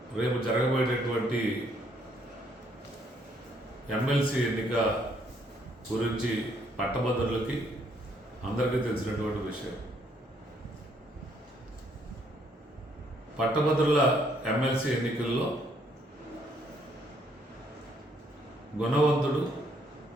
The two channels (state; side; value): normal; both; correlation 0.68